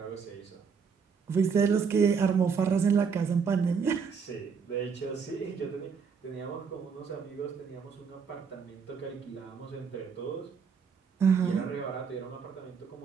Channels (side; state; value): left; quieter; 6.0 dB